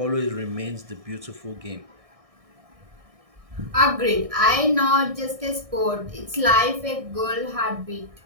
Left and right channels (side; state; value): left; late; 1.6 ms